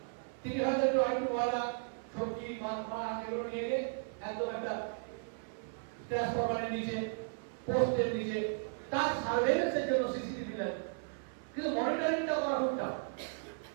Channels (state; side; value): silent; left; 54 dB below the other